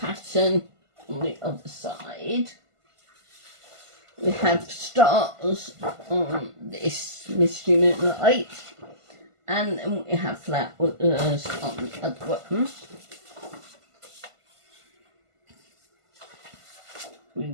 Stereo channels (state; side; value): late; left; 1.5 ms